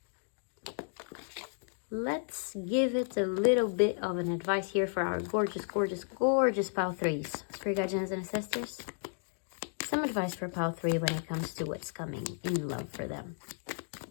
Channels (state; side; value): silent; right; digital silence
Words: Let's give it a little bit of an advice here for our gorgeous, gorgeous, gorgeous pile threes. Spirit guardians and ancestors. Some advice for pile three when it comes to what's coming in love for them.